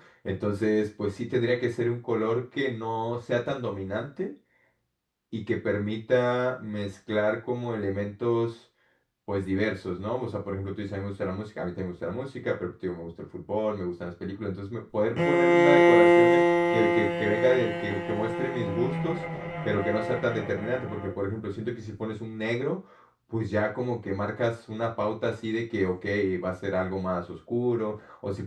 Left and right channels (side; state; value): both; identical; correlation 1.00